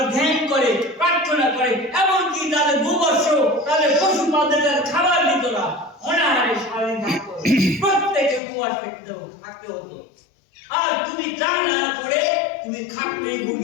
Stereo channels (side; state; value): right; drops out; at 8.4 s